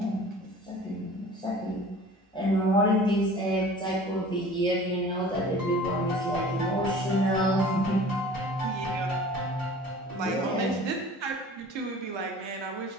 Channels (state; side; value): normal; both; correlation 0.44